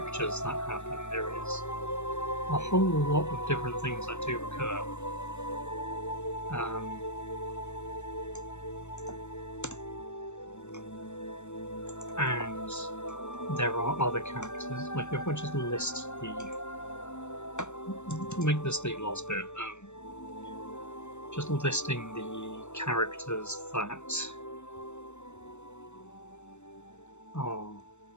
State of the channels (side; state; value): right; late; 0.83 ms